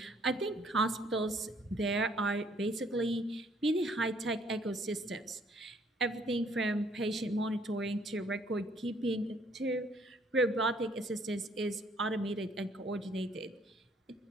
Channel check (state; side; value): normal; both; correlation 0.63